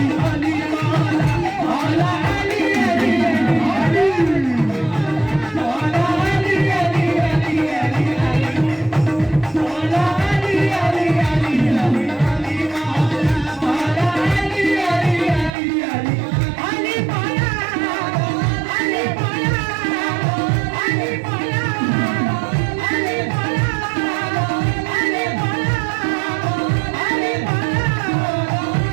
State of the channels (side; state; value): left; drops out; at 15.5 s